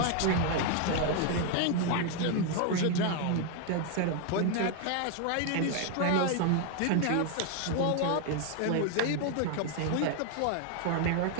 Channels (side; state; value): both; different; correlation 0.01